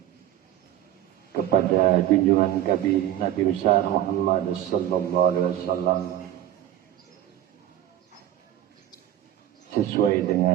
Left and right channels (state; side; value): quieter; left; 12.2 dB